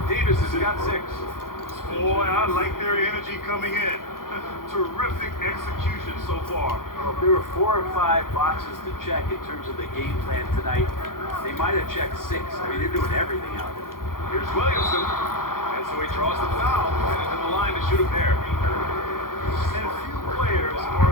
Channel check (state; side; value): late; right; 0.91 ms